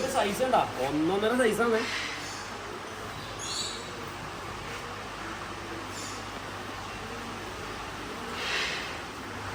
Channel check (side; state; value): both; identical; correlation 1.00